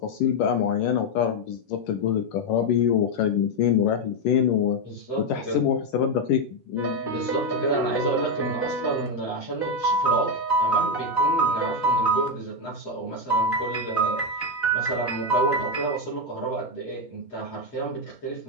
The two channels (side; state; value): right; late; 7.9 ms